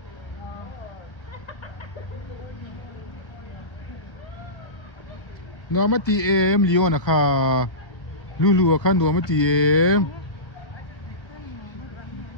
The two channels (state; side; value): late; right; 1.0 ms